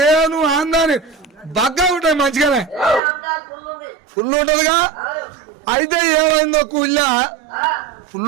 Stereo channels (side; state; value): left; drops out; at 3.0 s